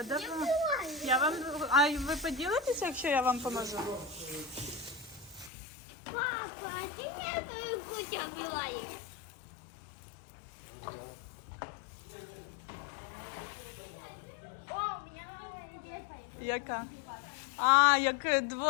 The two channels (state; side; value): drops out; right; at 5.5 s